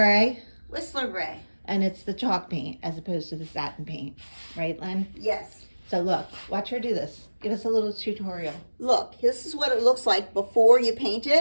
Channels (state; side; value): inverted; both; correlation -1.00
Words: Whistler Gray. and it's the chalk paint as opposed to the satin paint, right Lynn? Yes. So look, watch her do this. Give us a little tutorial. Look, this is what it looks like before you paint